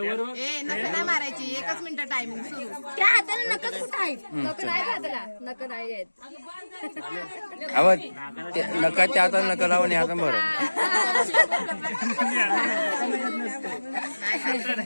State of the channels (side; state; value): both; inverted; correlation -1.00